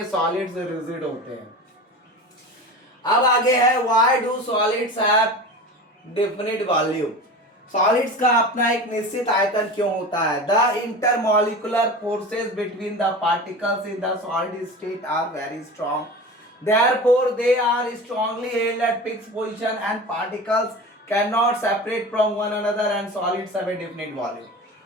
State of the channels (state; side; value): normal; both; correlation 0.32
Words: सॉलिड्स रिजिड होते हैं। अब आगे है, why do solids have definite volume? Solids का अपना एक निश्चित आयतन क्यों होता है? The intermolecular forces between the particles in the solid state are very strong, therefore they are strongly held at fixed position and particles cannot separate from one another and solids have a definite volume.